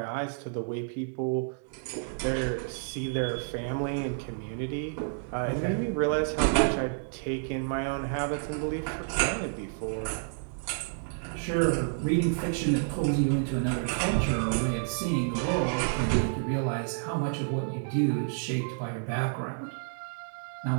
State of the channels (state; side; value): silent; left; digital silence